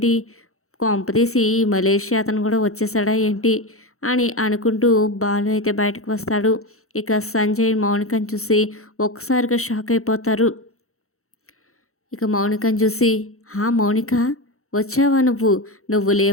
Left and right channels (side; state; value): right; late; 0.63 ms